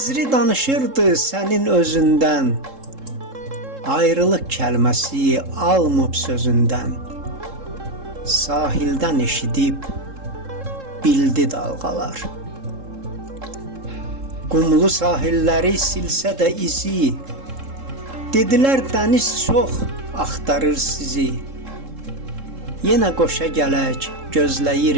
danışırdı sənin özündən. Ayrılıq kəlməsi almıb sözündən, sahildən eşidib bildi dalğalar. Qumlu sahilləri silsə də izi, dedilər dəniz çox axtarır sizi. Yenə qoşa gələk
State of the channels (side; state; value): left; late; 3.7 ms